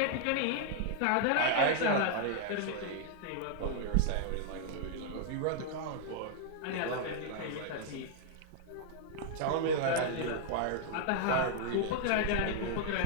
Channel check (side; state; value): both; different; correlation 0.00